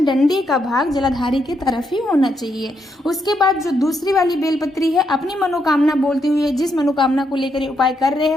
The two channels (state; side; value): normal; both; correlation 0.79